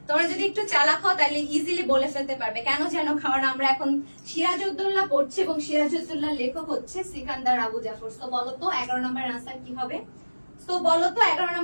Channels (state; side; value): inverted; both; correlation -1.00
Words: চালাক হও তাহলে ইজিলি বলে ফেলতে পারবে। কেন জানো? কারণ আমরা এখন সিরাজউদ্দৌলা পড়ছি এবং সিরাজউদ্দৌলার লেখক হচ্ছে সিকান্দার, আবু জাফর। তো বলো তো 11 নম্বর আনসার কি হবে? 11